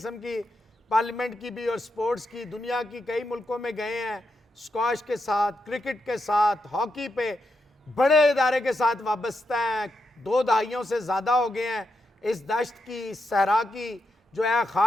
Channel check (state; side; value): normal; both; correlation 0.84